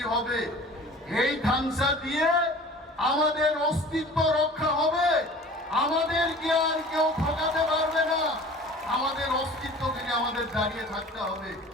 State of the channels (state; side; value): normal; both; correlation 0.44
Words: হবে? এই খানসা দিয়ে আমাদের অস্তিত্ব রক্ষা হবে, আমাদেরকে আর কেউ ঠকাতে পারবে না, আমাদের অস্তিত্বকে আমাদের দাঁড়িয়ে থাকতে হবে।